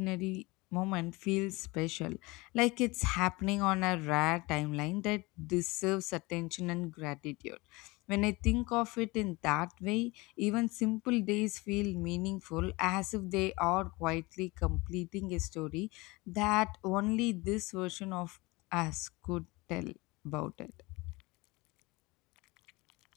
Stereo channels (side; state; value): right; quieter; 23.5 dB